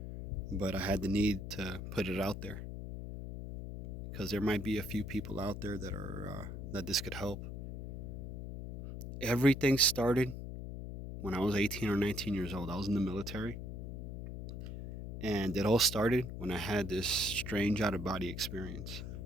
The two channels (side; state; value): left; noise; hum, 7 dB below the sound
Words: But I had the need to put it out there because there might be a few people out there that this could help. Everything started when I was 18 or 19 years old. I was in the military, and it all started when I had this strange out of body experience.